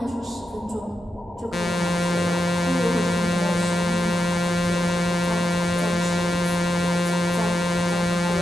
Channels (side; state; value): both; normal; correlation 0.87